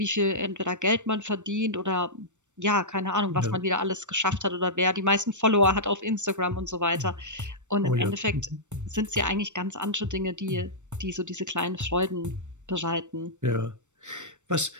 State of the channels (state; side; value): late; left; 0.84 ms